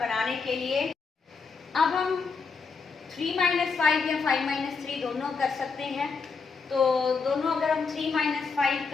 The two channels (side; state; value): right; quieter; 4.9 dB